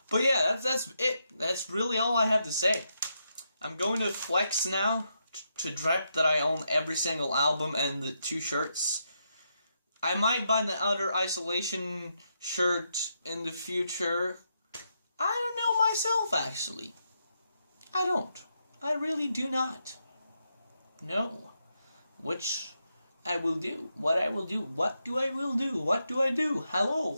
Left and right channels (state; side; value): inverted; both; correlation -0.82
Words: But yeah, that's it. That's really all I have to say. I'm going to flex now to drop that I own every single album and the 2 shirts. I might buy the Outer Isolation shirt in the future. I don't know, myself, actually. I don't. I really do not know which I will do, what I will do, what do I will do, what do I do,